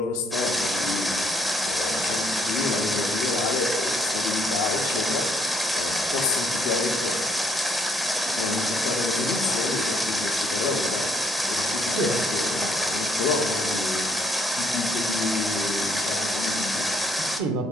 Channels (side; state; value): both; normal; correlation 0.69